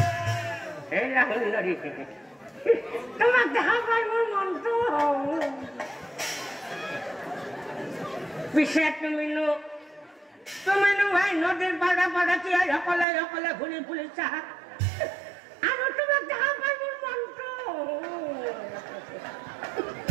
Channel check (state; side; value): drops out; left; at 13.1 s